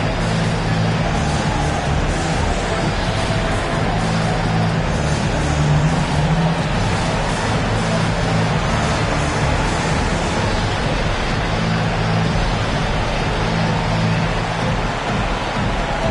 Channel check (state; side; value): identical; both; correlation 1.00